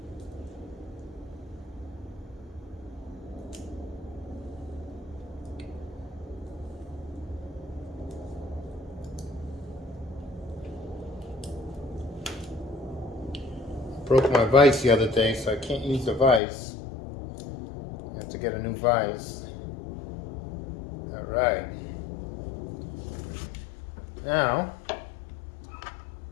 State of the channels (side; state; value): right; drops out; at 16.4 s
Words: Broke my vise the other day, so I can't use the vise. I have to get a new vise. Alright. Now,